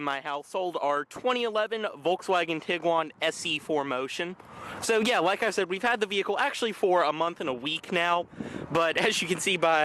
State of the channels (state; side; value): identical; both; correlation 1.00